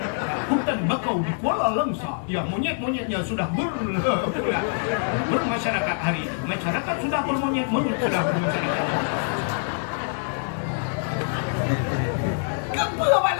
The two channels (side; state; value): right; silent; digital silence